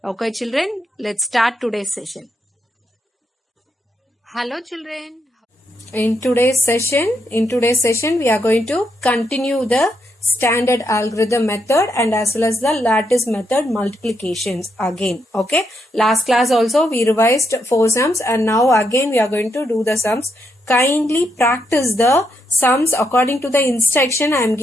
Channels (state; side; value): normal; both; correlation 0.79